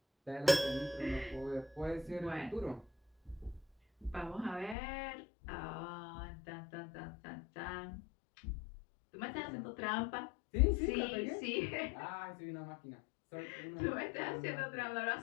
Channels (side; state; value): right; drops out; at 4.8 s